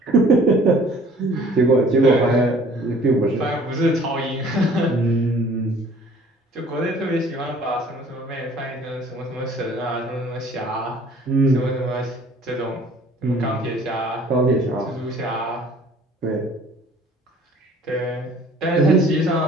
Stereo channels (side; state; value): both; normal; correlation 0.53